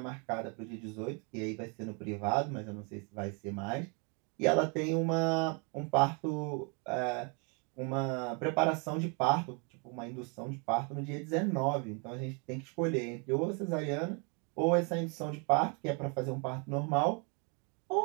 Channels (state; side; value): quieter; left; 35.2 dB